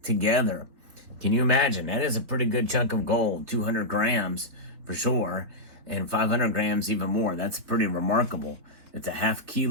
together. Can you imagine? That is a pretty good chunk of gold, 200 grams for sure. And 500 grams even more. That's pretty remarkable. It's a half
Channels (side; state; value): left; late; 3.9 ms